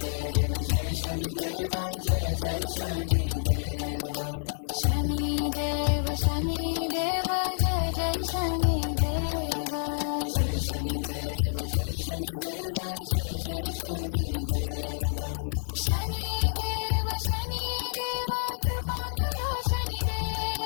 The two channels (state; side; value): silent; right; digital silence